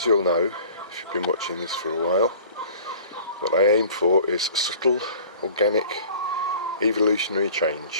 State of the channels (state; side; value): inverted; both; correlation -0.46